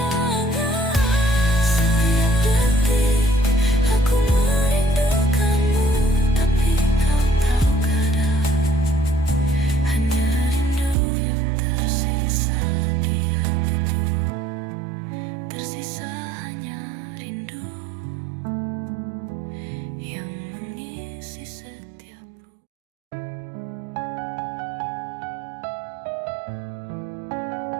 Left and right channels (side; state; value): left; drops out; at 11.0 s